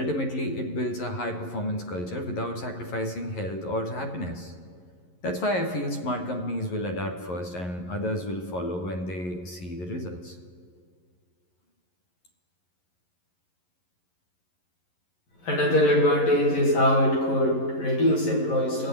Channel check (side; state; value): right; late; 11 ms